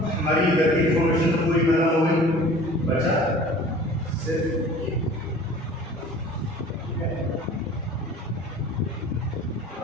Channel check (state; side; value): normal; both; correlation 0.45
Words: हमारी इधर की इंफॉर्मेशन तो पूरी खत्म हो गई, बचा सिर्फ